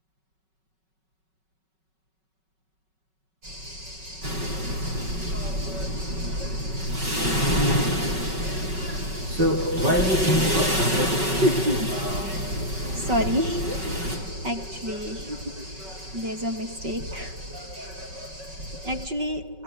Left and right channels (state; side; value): late; left; 5.3 ms